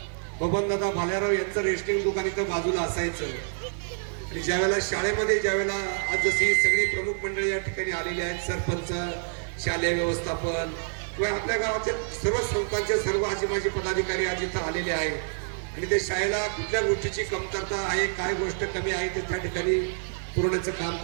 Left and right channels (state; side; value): silent; left; 60 dB below the other